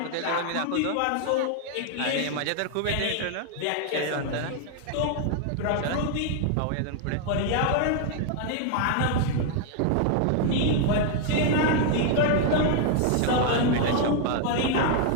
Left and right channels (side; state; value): both; different; correlation 0.00